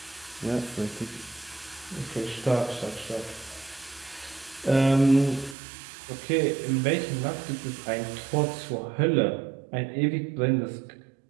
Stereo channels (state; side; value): drops out; left; at 5.6 s